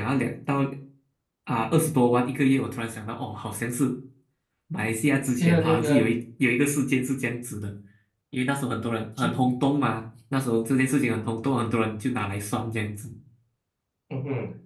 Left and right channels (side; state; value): both; identical; correlation 1.00